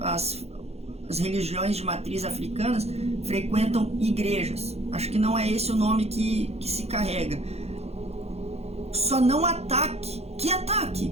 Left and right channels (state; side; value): late; left; 0.30 ms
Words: religiões de matriz africanas frequentam igrejas. Acho que não é esse o nome que se carrega. Só não ataque. Que ataque?